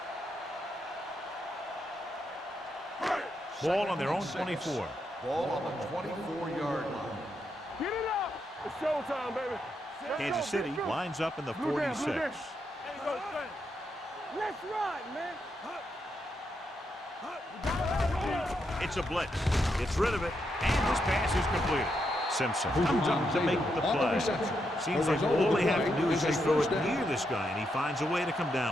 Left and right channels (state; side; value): normal; both; correlation 0.81